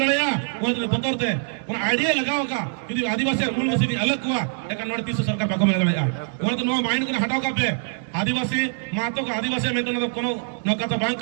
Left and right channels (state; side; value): silent; left; 61 dB below the other